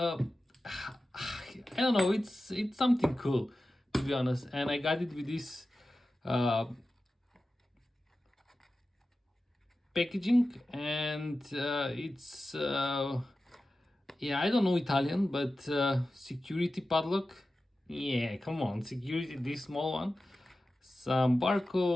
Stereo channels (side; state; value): both; normal; correlation 0.94